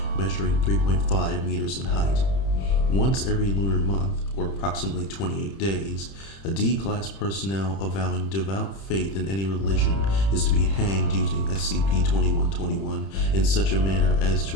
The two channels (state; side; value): late; right; 31 ms